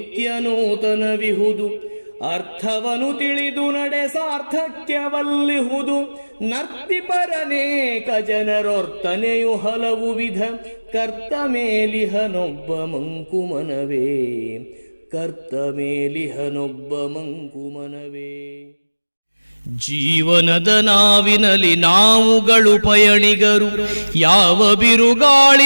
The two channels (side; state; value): both; inverted; correlation -1.00